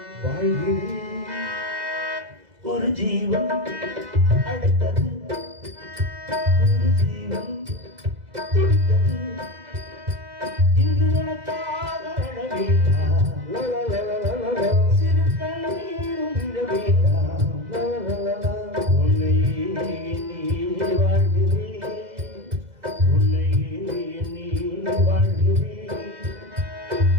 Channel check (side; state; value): left; late; 2.0 ms